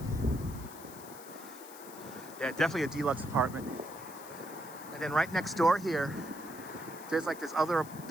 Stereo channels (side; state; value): left; noise; hiss, 16 dB below the sound